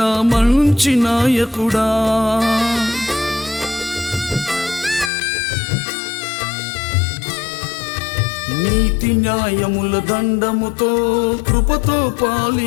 మంచి నాయకుడా. నీతి న్యాయముల దండముతో కృపతో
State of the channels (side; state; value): right; drops out; at 5.1 s